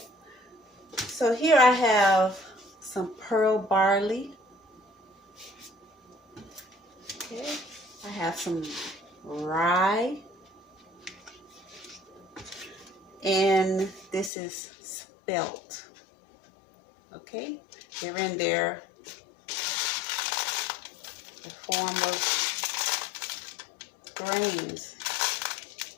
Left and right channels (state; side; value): drops out; right; at 14.3 s